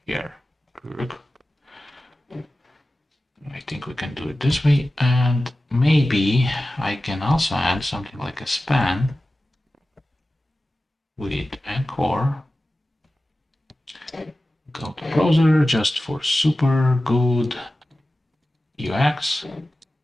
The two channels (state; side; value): normal; both; correlation 0.95